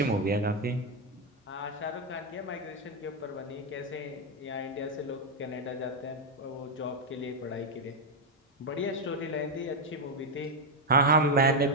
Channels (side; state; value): both; normal; correlation 0.03